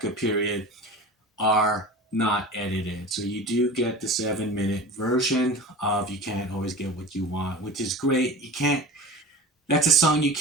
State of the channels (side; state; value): both; normal; correlation 0.35